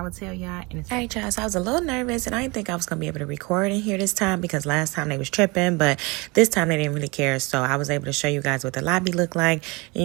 will tell y'all in a second. All right, y'all, so I was a little nervous, and I didn't think I was going to be able to record in here this time because last time they was tripping, but this time they didn't really care, so I was able to show you guys what the lobby looked like, and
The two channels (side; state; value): left; quieter; 26.4 dB